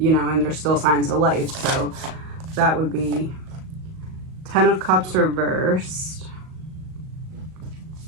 know, and there's still signs of life. So that would be 10 of Cups reversed.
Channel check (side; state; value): left; late; 38 ms